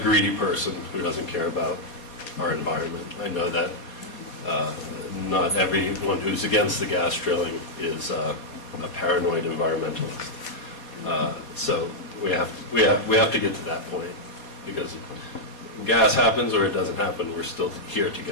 person who doesn't care about our environment. I know that not everyone who's against the gas drilling is a paranoid environmentalist. So we have to get to that point, because gas happens or it doesn't happen, we're still here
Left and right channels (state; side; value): late; right; 4.2 ms